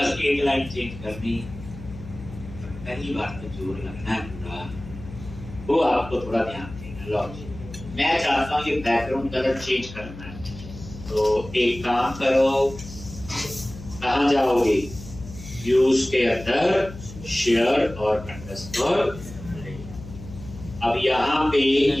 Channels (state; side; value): noise; left; hum, 14 dB below the sound